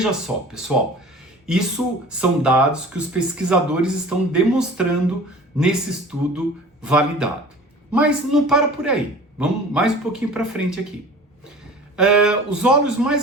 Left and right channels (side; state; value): both; normal; correlation 0.42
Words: só, pessoal, isso são dados que os pesquisadores estão demonstrando nesse estudo validado. Mas não para por aí, vamos mais um pouquinho para frente aqui. Os óleos